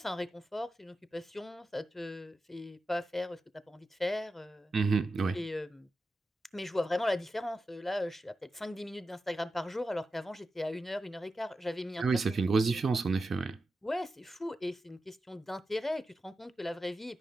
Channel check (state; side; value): normal; both; correlation 0.91